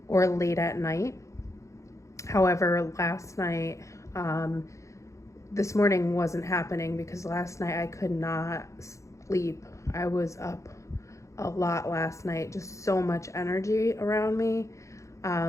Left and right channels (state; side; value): late; right; 0.15 ms